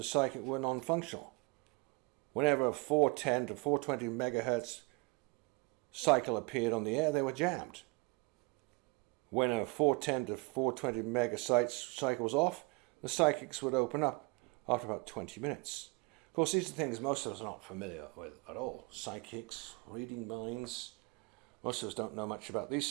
psychic were non-functional. Whenever a 410 to 420 megahertz cycle appeared on the air, they were jammed. When a 410 to 420 megahertz cycle was off, the psychics would open up after about 20 minutes. Of course, these are things most of us are not familiar with at all. Psychics, reading minds. Most of us don't know much about these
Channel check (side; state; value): left; quieter; 28.4 dB